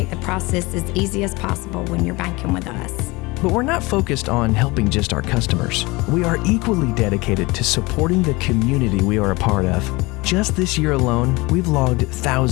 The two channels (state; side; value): quieter; right; 23.6 dB